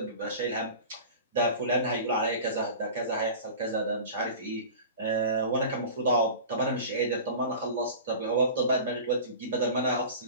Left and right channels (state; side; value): inverted; both; correlation -0.36